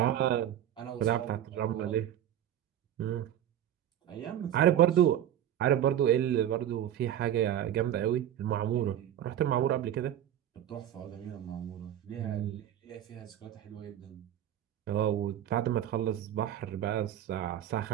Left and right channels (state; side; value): quieter; left; 11.1 dB